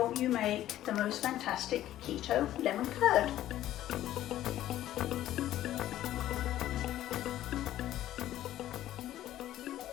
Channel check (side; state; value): right; quieter; 13.3 dB